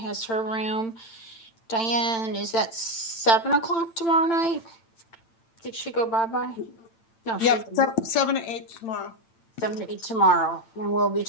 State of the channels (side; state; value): right; late; 8.9 ms